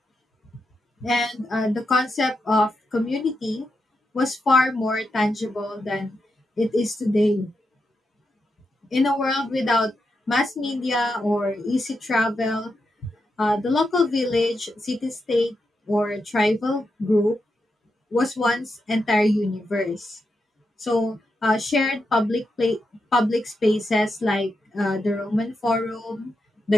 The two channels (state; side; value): normal; both; correlation 0.85